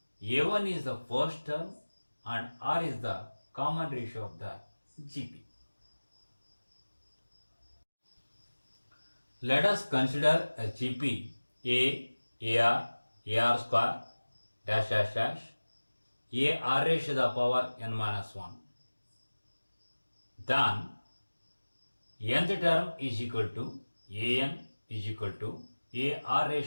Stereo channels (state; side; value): inverted; both; correlation -1.00